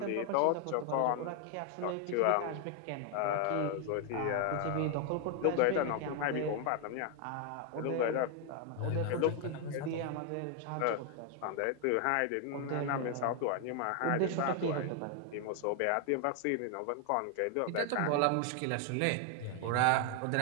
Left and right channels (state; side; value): different; both; correlation 0.01